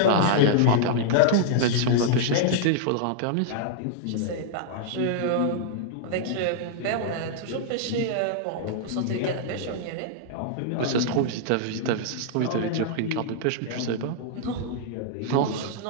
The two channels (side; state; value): both; different; correlation -0.01